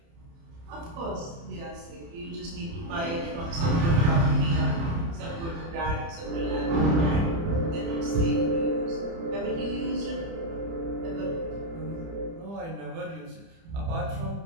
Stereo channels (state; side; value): late; left; 30 ms